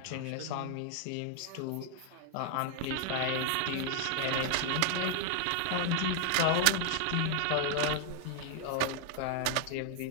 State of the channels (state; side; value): different; both; correlation 0.00